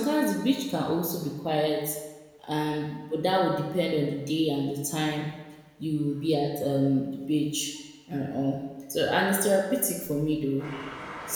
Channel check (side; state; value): both; identical; correlation 1.00